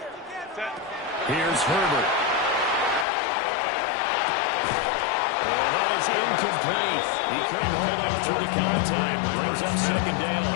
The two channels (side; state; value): right; drops out; at 3.1 s